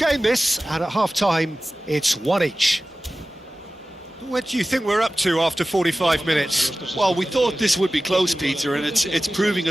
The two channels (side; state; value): both; normal; correlation 0.96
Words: this, and at half-time, it's one each. What do you think we're up to after 45 minutes? Well, we thought this would be close, Peter, and it's proving